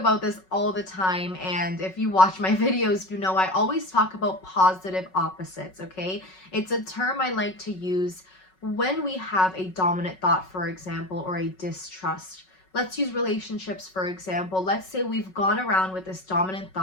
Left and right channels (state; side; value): late; right; 5.4 ms